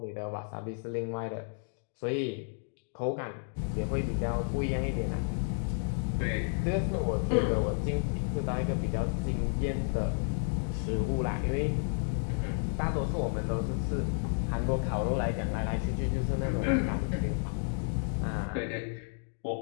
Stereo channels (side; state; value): right; silent; 57 dB below the other